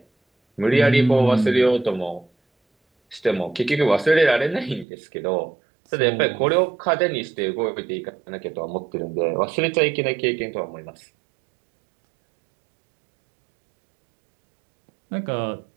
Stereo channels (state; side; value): drops out; left; at 4.9 s